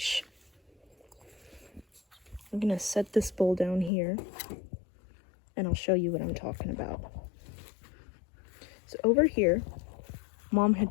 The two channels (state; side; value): drops out; right; at 3.9 s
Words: I'm gonna set this bowl down here and I'll show you what I'm talking about. So over here, Mom